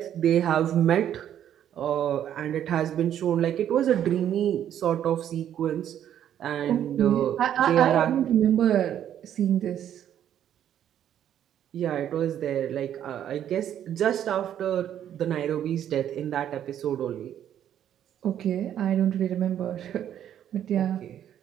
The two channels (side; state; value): left; quieter; 10.3 dB